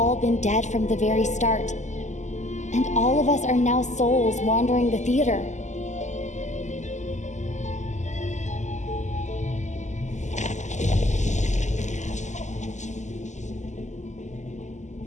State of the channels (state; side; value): late; right; 0.34 ms